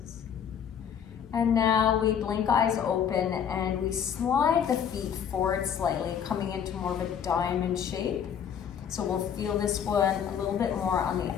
And now we blink eyes open and we slide the feet forward slightly, coming into more of a diamond shape. So we'll feel this one a little bit more on the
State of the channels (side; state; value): right; quieter; 8.2 dB